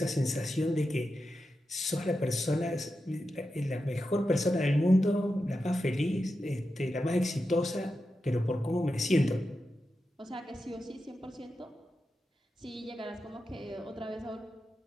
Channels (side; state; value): both; normal; correlation 0.90